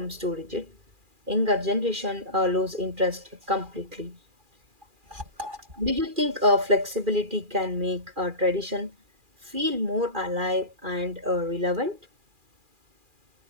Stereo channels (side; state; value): left; late; 2.4 ms